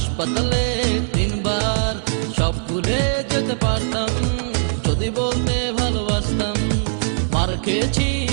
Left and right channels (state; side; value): silent; left; digital silence